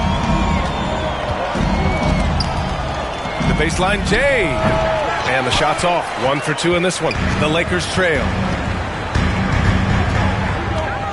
The baseline, Jay. And the shot's off. 1 for 2 in this one. The Lakers trail.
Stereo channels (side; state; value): both; identical; correlation 1.00